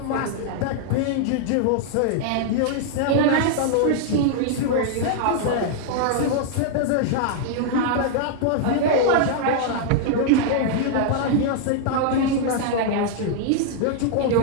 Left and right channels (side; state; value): both; different; correlation -0.01